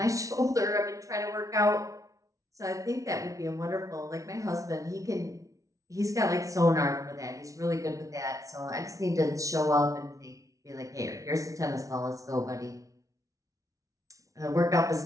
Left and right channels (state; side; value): late; left; 0.16 ms